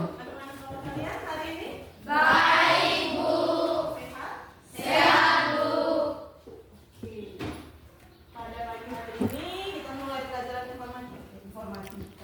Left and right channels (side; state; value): both; identical; correlation 1.00